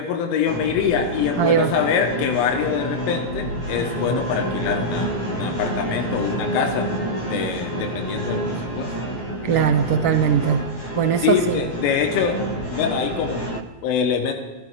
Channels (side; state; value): right; late; 17 ms